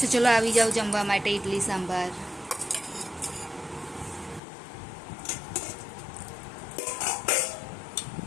ચલો આવી જાઓ જમવા માટે. ઇડલી સાંભાર.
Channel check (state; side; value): drops out; right; at 4.4 s